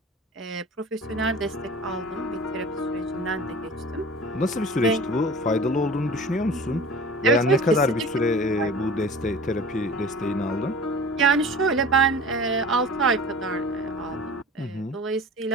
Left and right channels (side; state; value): both; normal; correlation 0.39